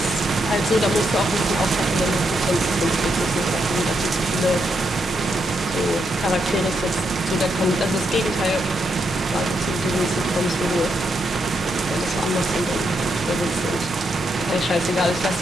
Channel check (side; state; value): both; normal; correlation 0.80